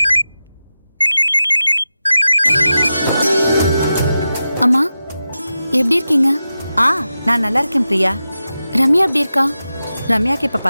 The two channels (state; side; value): inverted; both; correlation -0.92